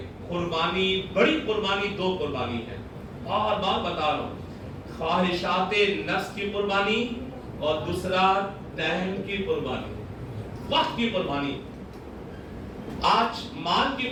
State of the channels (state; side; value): identical; both; correlation 1.00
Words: قربانی، بڑی قربانی دو قربانی ہے، بار بار بتا رہا ہوں. خواہشات نفس کی قربانی اور دوسرا ٹائم کی قربانی، وقت کی قربانی. آج مال کی